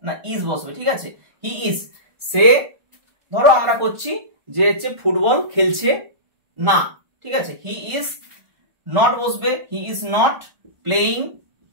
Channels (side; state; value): left; late; 1.4 ms